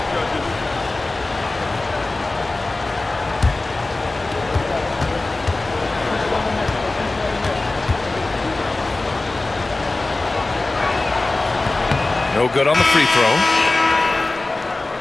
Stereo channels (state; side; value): quieter; right; 3.1 dB